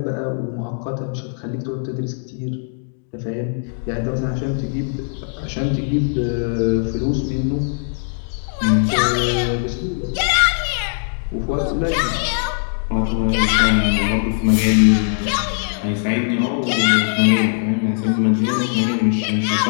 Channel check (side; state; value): right; silent; digital silence